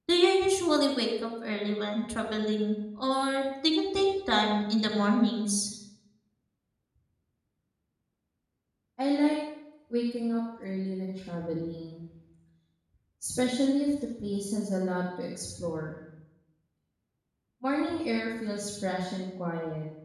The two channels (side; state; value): both; identical; correlation 1.00